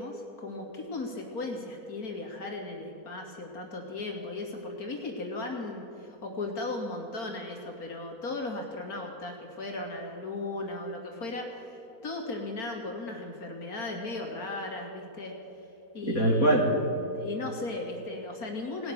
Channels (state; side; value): late; right; 4.4 ms